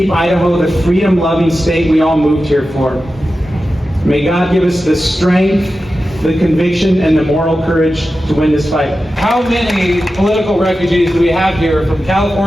Idaho the freedom-loving state we all moved here for. May God give us the strength, the conviction, and the moral courage to win this fight. How many political refugees do we have here from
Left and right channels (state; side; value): normal; both; correlation 0.93